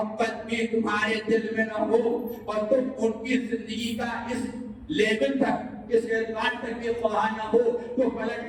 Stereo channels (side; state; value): both; identical; correlation 1.00